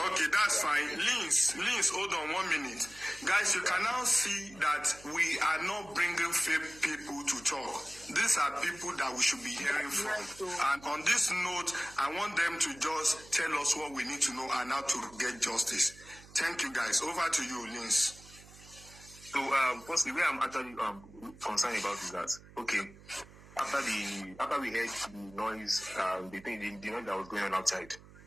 that's fine. Linz, hold on 1 minute. Guys, you can now see that we are not bringing fake people to talk. These are people that we should be hearing from. And on this note, I want them to just tell us what we need to know and how to get justice. Thank you, guys. Over to you, Linz. So, firstly, where I'm actually concerned about is that, okay, after we heard the noise, the noise that was going on outside,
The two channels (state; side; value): noise; right; hum, 21 dB below the sound